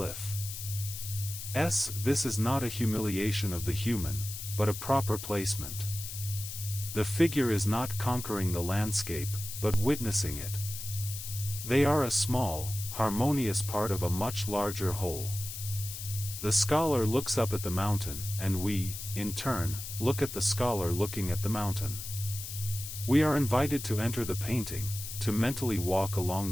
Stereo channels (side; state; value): left; noise; hiss, 8 dB below the sound